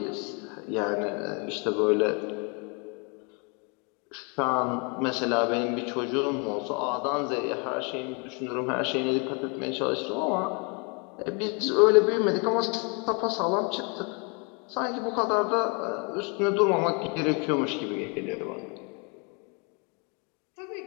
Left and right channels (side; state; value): right; quieter; 33.5 dB